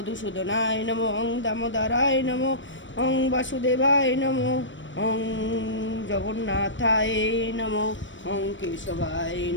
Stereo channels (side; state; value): right; late; 0.55 ms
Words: নমঃ, ওং দামোদরায় নমঃ, ওং বাসুদেবায় নমঃ, ওং জগন্নাথায় নমঃ, ওং কেশবায়